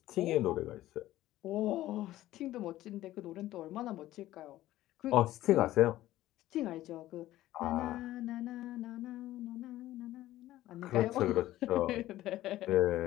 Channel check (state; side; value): quieter; right; 15.0 dB